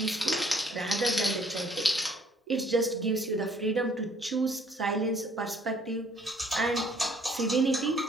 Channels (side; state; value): both; normal; correlation 0.61